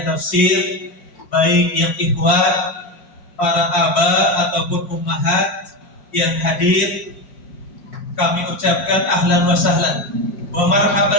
tafsir, baik yang ikhwan, para aba ataupun ummahat yang hadir, kami ucapkan ahlan wa sahlan wa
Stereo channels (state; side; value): late; right; 5.6 ms